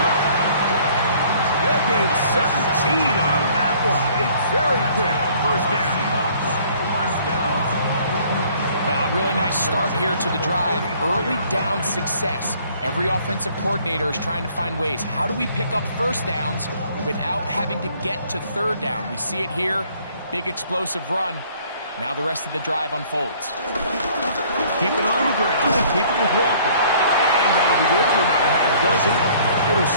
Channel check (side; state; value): both; inverted; correlation -0.58